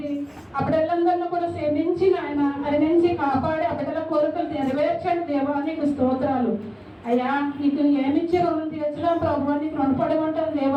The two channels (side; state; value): both; identical; correlation 1.00